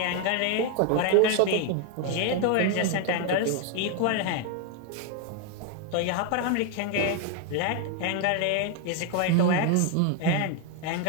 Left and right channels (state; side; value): different; both; correlation 0.01